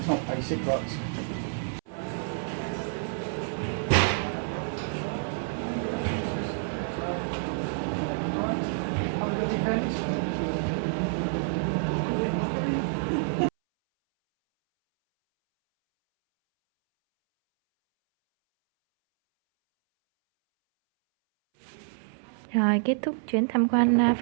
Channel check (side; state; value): left; silent; 59 dB below the other